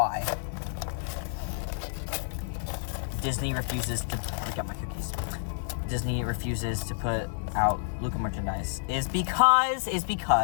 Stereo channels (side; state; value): right; silent; digital silence